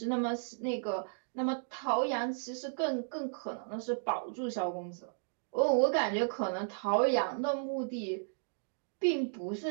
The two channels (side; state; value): left; silent; digital silence